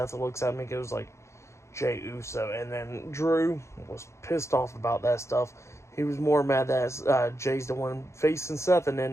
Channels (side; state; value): right; late; 0.14 ms